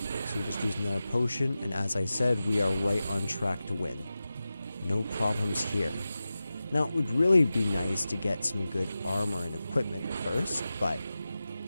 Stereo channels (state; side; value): inverted; both; correlation -0.94